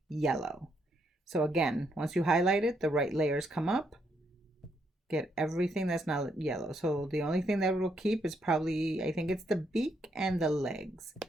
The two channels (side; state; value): both; normal; correlation 0.76